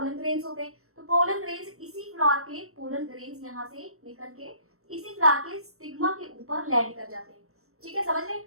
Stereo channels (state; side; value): late; left; 0.63 ms